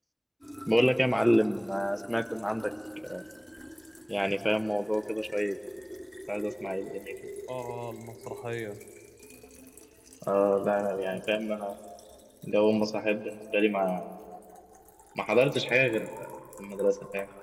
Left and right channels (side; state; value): both; identical; correlation 1.00